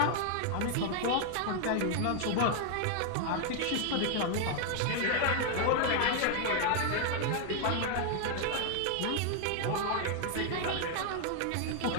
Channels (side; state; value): both; different; correlation 0.00